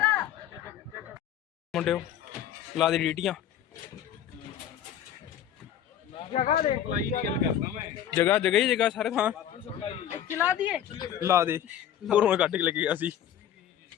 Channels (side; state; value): right; quieter; 10.3 dB